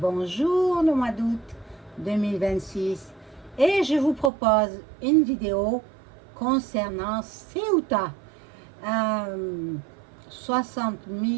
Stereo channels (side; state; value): left; drops out; at 4.3 s